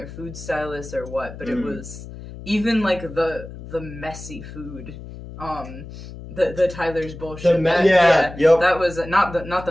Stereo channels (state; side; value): noise; left; hum, 13 dB below the sound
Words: food stylist or what, but it was even like the messy food. The Tyler's bullshit. Yep. That was not